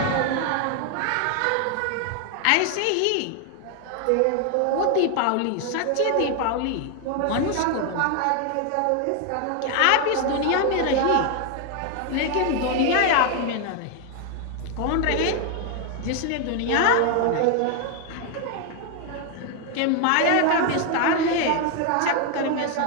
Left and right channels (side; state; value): both; different; correlation 0.00